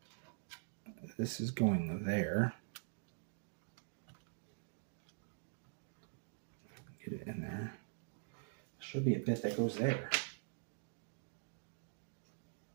This is going there. Get it in there. There should be a bit that goes there.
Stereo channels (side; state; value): left; silent; digital silence